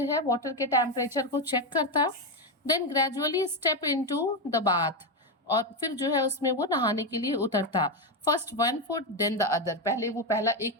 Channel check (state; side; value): normal; both; correlation 0.09